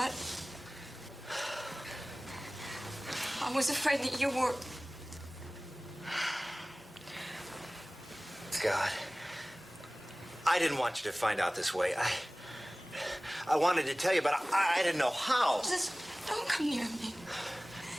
I was afraid that you were... God. I didn't want you to find out this way. I wanted to tell you, but I didn't know how. Just don't come near me.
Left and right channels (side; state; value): both; normal; correlation 0.98